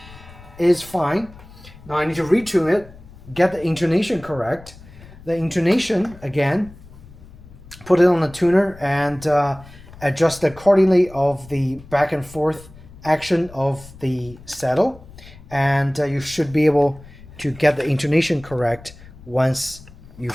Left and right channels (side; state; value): left; noise; rumble, 20 dB below the sound